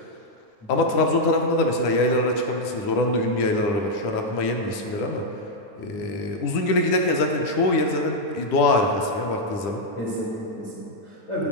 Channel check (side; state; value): right; late; 9.9 ms